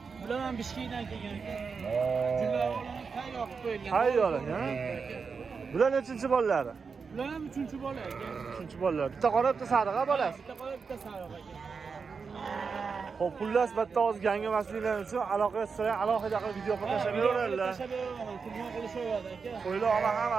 Bular ham Bishkekdan kelgan aka. Jular olani tayyor qilib qo'yilgan. Tayyor, ha? Bular nechinchi bolalari? Ular ham 3-chi bola aka. Uchinchi bolalar. Bitta qora, bitta sariq bolasi. Bitta qora, bitta sariq aka. Xo'p, xullas bitta oz gangamasliklar uchun aloqa qilsa, alohida qilib video qilib tashlab beraveradilar. Tashlab beraman, telefon qilishaveradi aka. Qo'ylar ama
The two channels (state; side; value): quieter; left; 5.3 dB